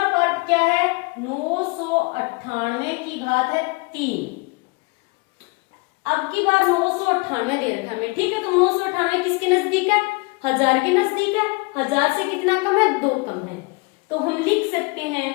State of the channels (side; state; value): right; quieter; 28.2 dB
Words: पार्ट क्या है, 998 की घात है 3। अब की बार 998 दे रखा है हमें। ठीक है, तो 998 किसके नजदीक है, 1000 के नजदीक है। 1000 से कितना कम है, 2 कम है। तो हम लिख सकते हैं